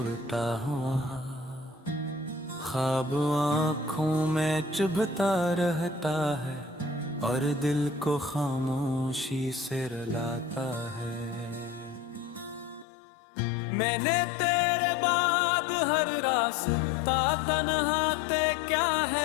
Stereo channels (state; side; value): drops out; right; at 12.9 s